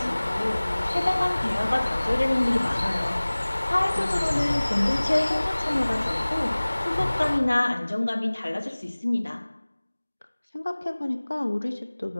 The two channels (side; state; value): both; inverted; correlation -1.00